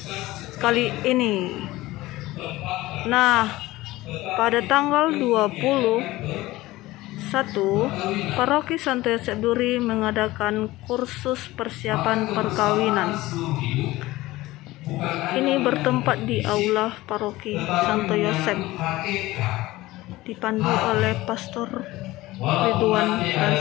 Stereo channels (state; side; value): quieter; right; 18.3 dB